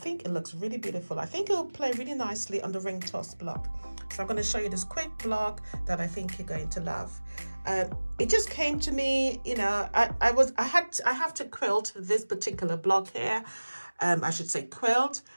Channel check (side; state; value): both; inverted; correlation -1.00